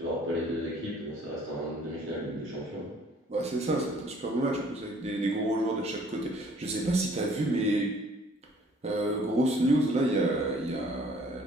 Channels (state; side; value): normal; both; correlation 0.57